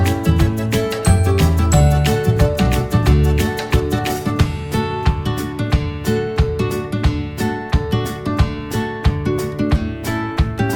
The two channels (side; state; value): both; identical; correlation 1.00